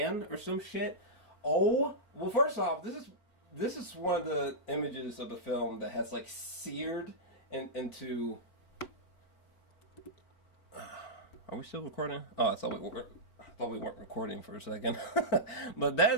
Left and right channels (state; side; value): late; right; 4.4 ms